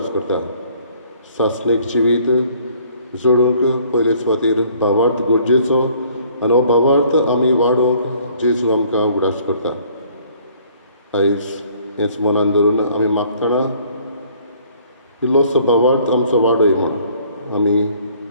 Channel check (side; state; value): both; inverted; correlation -0.59